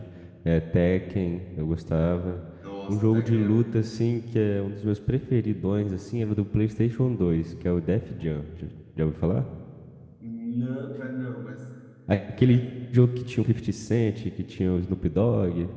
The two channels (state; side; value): identical; both; correlation 1.00